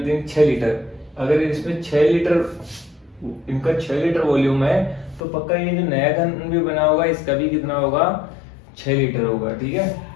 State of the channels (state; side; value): drops out; right; at 5.2 s